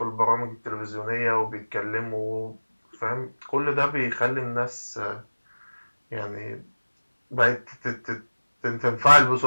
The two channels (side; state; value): both; inverted; correlation -1.00